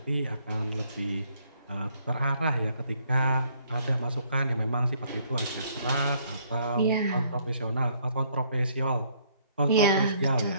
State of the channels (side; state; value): both; inverted; correlation -0.66